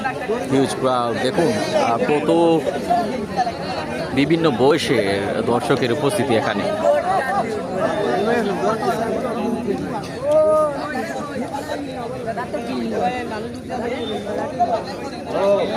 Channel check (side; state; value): both; identical; correlation 1.00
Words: হিউজ ক্রাউড, দেখুন কত বিভিন্ন বয়সের দর্শকের উপস্থিতি এখানে।